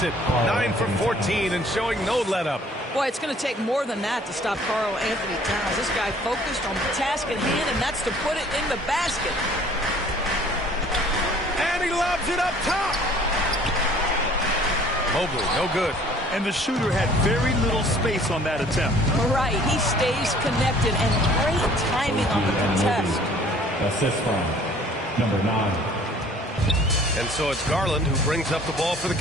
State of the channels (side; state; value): both; normal; correlation 0.54